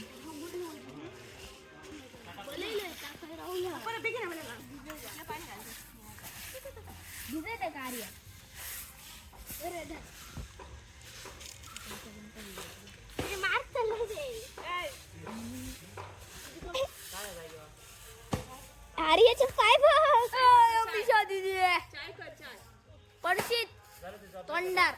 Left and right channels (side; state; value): both; identical; correlation 1.00